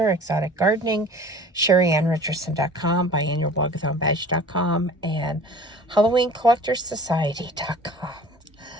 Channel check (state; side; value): normal; both; correlation 0.45